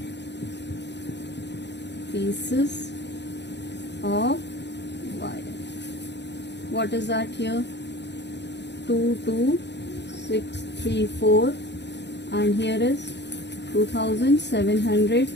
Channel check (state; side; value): late; right; 0.50 ms